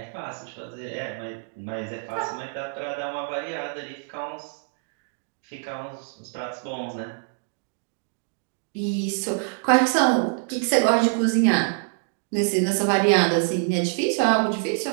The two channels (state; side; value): silent; left; 61 dB below the other